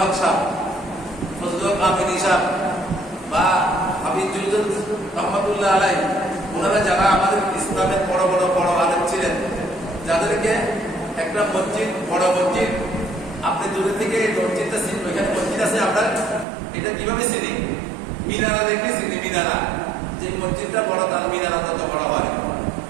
হক সাহেব, ফজলুল আমিন সাহেব বা হাবিব জুলজুল রহমাতুল্লাহ আলাইহি, ওনারা যারা আমাদের ইসলামের বড় বড় বড় আলেম ছিলেন, যাদেরকে একটা মসজিদ, বড় মসজিদ, আপনি দূরে থেকে মসজিদটা চিনবেন, ওইখানে মসজিদ আছে আপনার, এটা কিভাবে চিনি? মিনারা দেখে চিনি। মিনারা, যে মসজিদটা বড় তার মিনারা তত বড় হয়,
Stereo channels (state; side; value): drops out; left; at 16.4 s